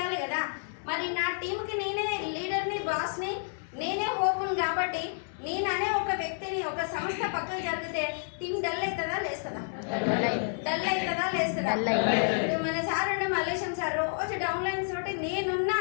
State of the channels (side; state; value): right; silent; digital silence